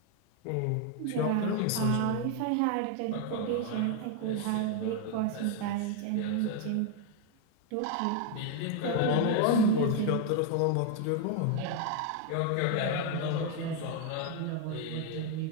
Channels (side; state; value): both; different; correlation 0.01